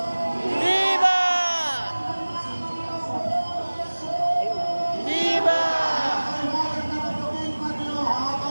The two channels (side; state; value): both; inverted; correlation -1.00